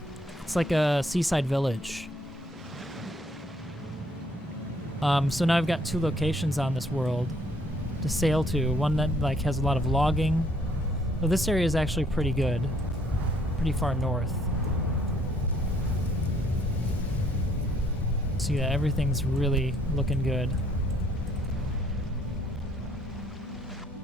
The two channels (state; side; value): normal; both; correlation 0.65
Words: It's like a seaside village. So now I've got two locations on this world to sail to. One that like has a lot of logging. Well, this area is actually pretty good, pretty far north. So yeah, everything's really looking good.